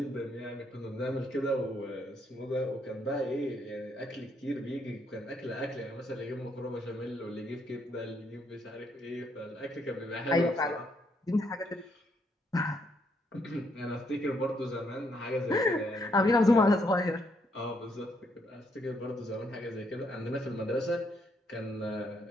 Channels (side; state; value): both; normal; correlation 0.73